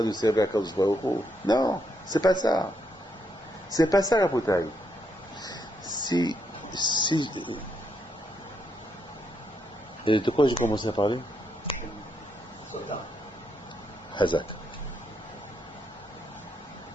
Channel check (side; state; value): both; normal; correlation 0.78